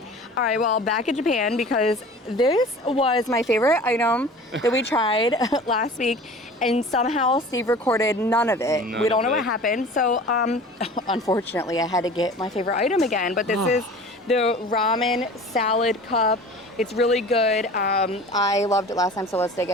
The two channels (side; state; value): both; normal; correlation 0.41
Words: All right, well, back in Japan, because this was my favorite item that we tried last week, and somehow Steve recorded none of it. We don't know what happened. So, unfortunately, I had to get my favorite item again, but this is the ramen salad cup. It's really good. I loved it last time, so let's dig